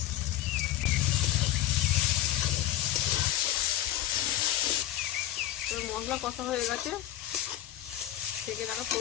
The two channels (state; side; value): quieter; right; 13.2 dB